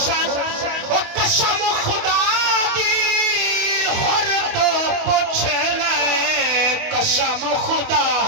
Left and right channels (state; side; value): late; left; 28 ms